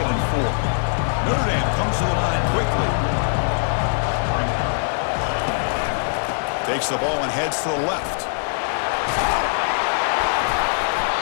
and 4. Notre Dame comes to the line quickly. Takes the ball and heads to the left.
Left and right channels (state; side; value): silent; right; 64 dB below the other